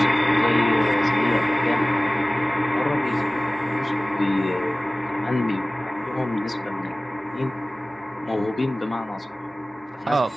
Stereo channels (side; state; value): both; normal; correlation 0.98